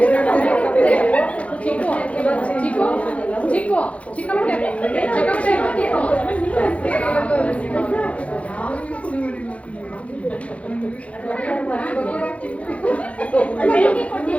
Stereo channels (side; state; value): right; late; 0.064 ms